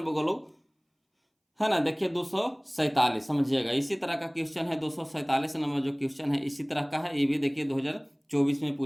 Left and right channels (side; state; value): both; identical; correlation 1.00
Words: बोलो, है ना। देखिए 247 समझिएगा, इसी तरह का क्वेश्चन है 247 नंबर जो क्वेश्चन है, इसी तरह का है। ये भी देखिए 2024 में